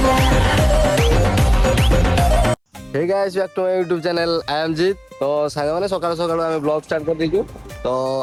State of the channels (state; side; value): identical; both; correlation 1.00